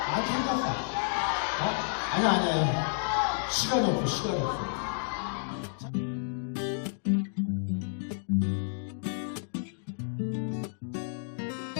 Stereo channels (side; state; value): right; silent; digital silence